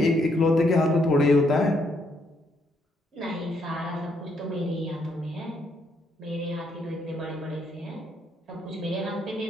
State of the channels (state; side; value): normal; both; correlation 0.73